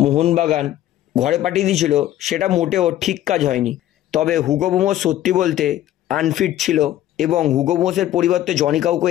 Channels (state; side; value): quieter; right; 12.9 dB